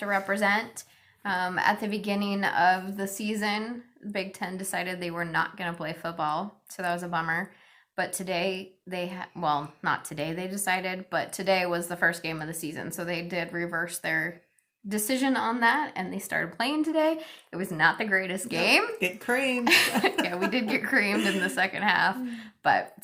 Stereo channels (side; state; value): both; identical; correlation 1.00